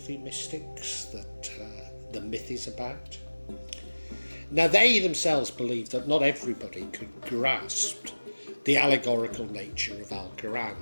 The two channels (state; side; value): inverted; both; correlation -1.00